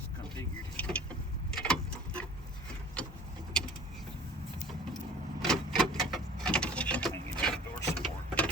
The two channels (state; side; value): normal; both; correlation 0.46